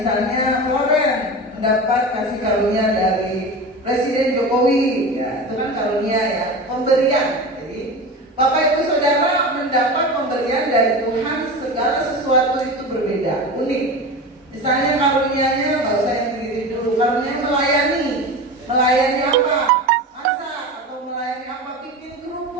misalnya Floren mendapat kasih karunia dari Presiden Jokowi, ya, itu kan karunia, ya, pemberian. Jadi Bapak Ibu Saudara mendapat pemberian dari Tuhan, segala sesuatu itu berbeda, unik. Misalnya karunianya, nggak usah yang diri dulu, karunia melayani apa? Masak atau melayani apa? Bikin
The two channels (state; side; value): normal; both; correlation 0.29